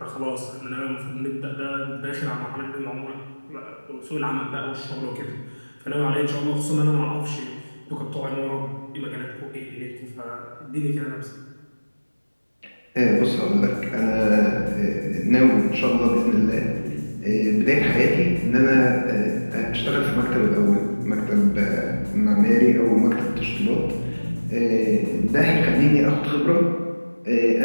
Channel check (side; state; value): both; inverted; correlation -1.00